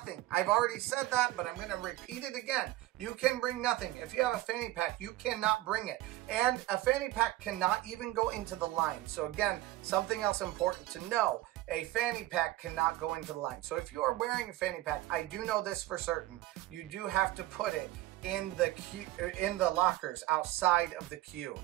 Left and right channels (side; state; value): left; quieter; 16.7 dB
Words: I've already said that, but I'm going to repeat it again. You can bring nothing. If you have a fanny pack, you cannot bring it. And a fanny pack cannot even go into the line. So again, something else important to know. A fanny pack cannot go into the line. So if you are wearing a fanny pack, I do know this for certain, you do have to put it in the queue, in the lockers outside of the queue.